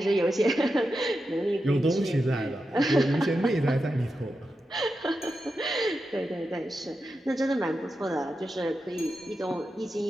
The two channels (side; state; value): both; normal; correlation 0.89